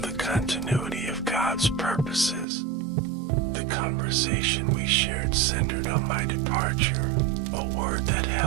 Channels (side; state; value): left; drops out; at 2.5 s